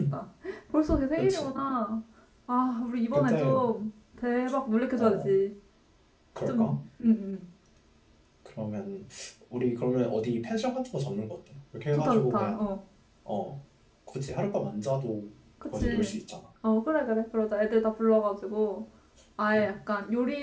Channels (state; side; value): identical; both; correlation 1.00